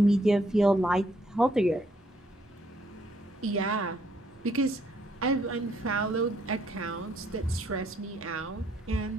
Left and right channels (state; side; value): normal; both; correlation 0.69